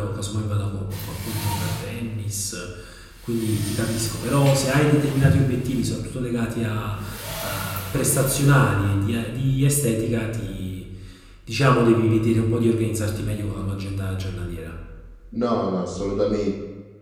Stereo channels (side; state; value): both; identical; correlation 1.00